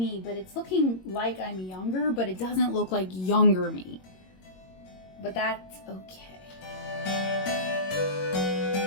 but it's looking like I'm younger, but it doesn't look like younger me. But that's okay.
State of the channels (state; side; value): late; right; 22 ms